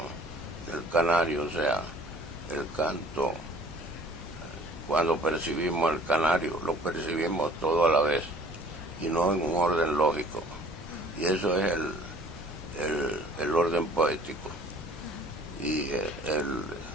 del canario, o sea, el canto, cuando percibimos el canario, lo percibimos todo a la vez y no en un orden lógico, y eso es el orden poético. Y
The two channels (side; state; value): both; normal; correlation 0.52